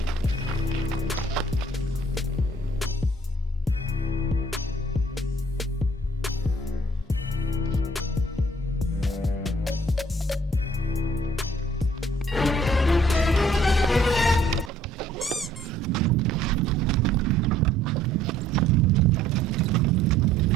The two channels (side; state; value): both; normal; correlation 0.60